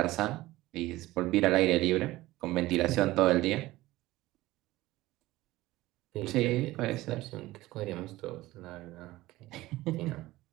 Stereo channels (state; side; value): quieter; left; 17.8 dB